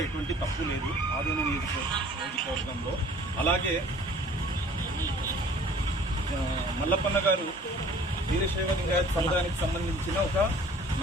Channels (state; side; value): normal; both; correlation 0.50